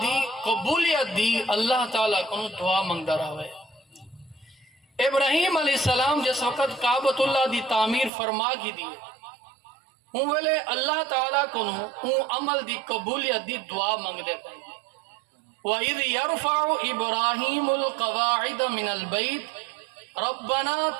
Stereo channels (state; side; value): drops out; left; at 8.1 s